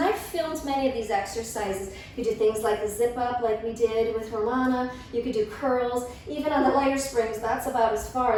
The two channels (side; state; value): both; identical; correlation 1.00